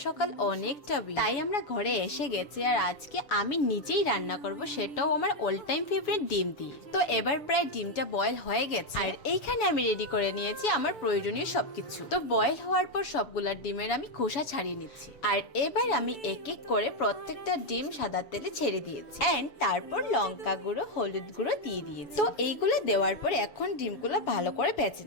সকাল অনেকটা ভিড়, তাই আমরা ঘরে এসে গেছি। আর আজকে আমি নিজেই রান্না করব, সেটাও আমার অল টাইম ফেভারিট ডিম দিয়ে। তো এবার প্রায় ডিমটা বয়েল হয়ে গেছে, আর এইখানে আমি রেডি করে নিয়েছি আমার প্রয়োজনীয় সবকিছু। তো বয়েল হওয়ার পর সবগুলা ডিমের আমি খোসা ছাড়িয়ে নিচ্ছি, আর এবার আমি এক এক করে প্রত্যেকটা ডিম সাদা তেলে ছেড়ে দিয়েছি, এন্ড তারপর লঙ্কা গুঁড়ো, হলুদ গুঁড়ো দিয়ে দিয়েছি। তো এইগুলো দেওয়ার পর এখন ডিমগুলো ভালো করে ভেজে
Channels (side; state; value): right; late; 7.1 ms